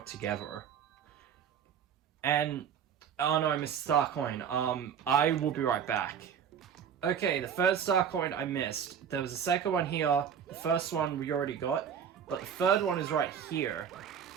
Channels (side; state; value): left; quieter; 8.1 dB